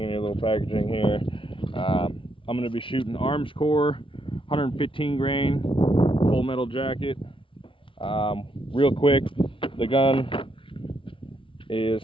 and your little packaging here. I'm going to be shooting arms core, 115 grain, full metal jacket. Real quick, the gun is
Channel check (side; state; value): right; late; 0.25 ms